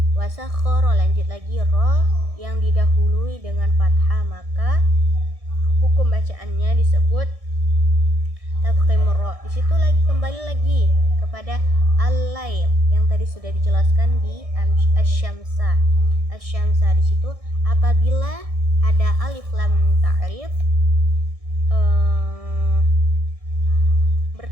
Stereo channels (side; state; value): left; late; 1.6 ms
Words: Wasakhara, lanjut lagi ro yang didahului dengan fathah, maka hukum bacaannya disebut tafkhimur ro. Di situ lagi kembali lagi kepada al-lail yang tadi sudah dijelaskan di asyamsa. Asyamsa di situ apabila ada alif lam ta'rif